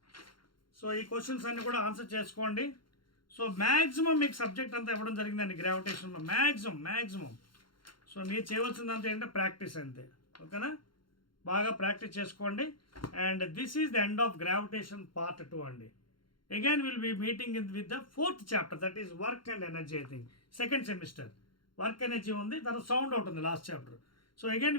సో ఈ క్వశ్చన్స్ అన్నీ కూడా ఆన్సర్ చేసుకోండి. సో మ్యాక్సిమం మీకు సబ్జెక్ట్ అంతా ఇవ్వడం జరిగిందండి గ్రావిటేషన్లో, మ్యాక్సిమం. సో మీరు చేయవలసిందంతా ఏంటంటే ప్రాక్టీస్ అంతే. ఓకేనా? బాగా ప్రాక్టీస్ చేసుకోండి. And this is the end of gravitation part 2 అండి. Again will be meeting with the 4th chapter, that is work and energy. I think 2nd semester work energy ఉంది, తర్వాత sound out ఉంది last chapter. So again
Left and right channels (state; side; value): late; right; 0.73 ms